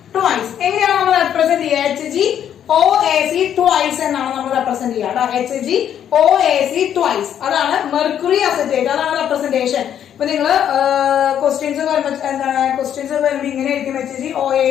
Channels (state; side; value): quieter; right; 9.7 dB